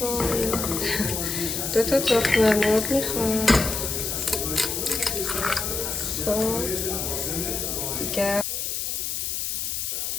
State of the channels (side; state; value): left; noise; hiss, 2 dB below the sound